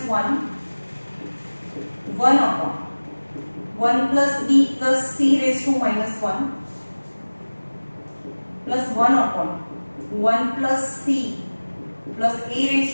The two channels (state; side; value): inverted; both; correlation -1.00